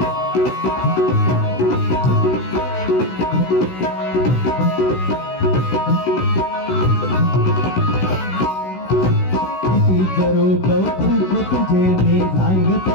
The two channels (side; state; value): right; late; 16 ms